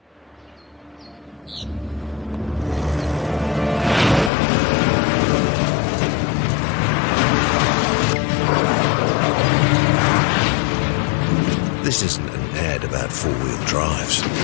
This isn't an ad about four-wheel drives.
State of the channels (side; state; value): right; drops out; at 4.3 s